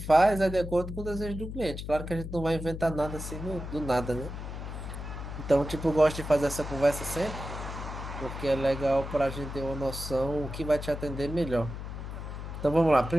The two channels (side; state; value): left; noise; hum, 8 dB below the sound